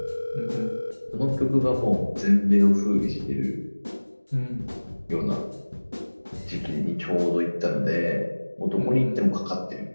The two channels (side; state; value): both; inverted; correlation -1.00